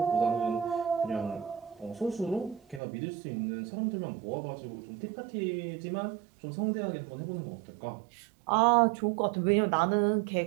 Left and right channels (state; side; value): drops out; left; at 2.8 s